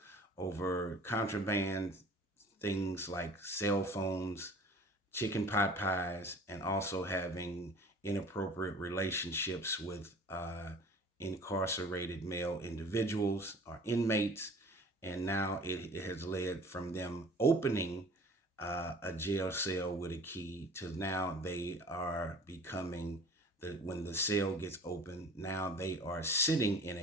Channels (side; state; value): both; normal; correlation 0.46